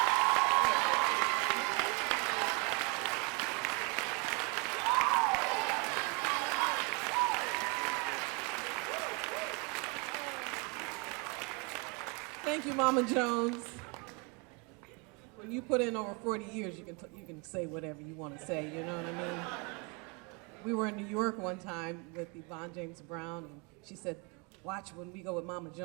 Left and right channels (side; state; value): left; quieter; 30.0 dB